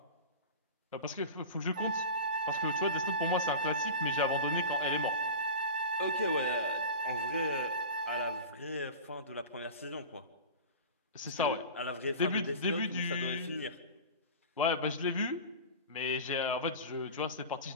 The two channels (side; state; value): both; inverted; correlation -0.31